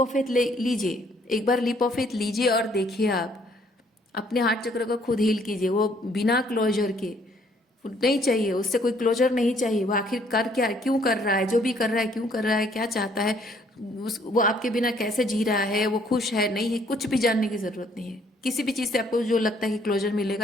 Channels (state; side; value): normal; both; correlation 0.64